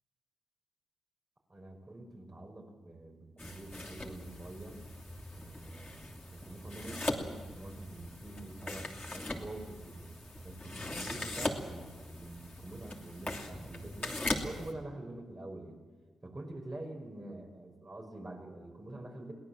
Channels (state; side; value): normal; both; correlation 0.86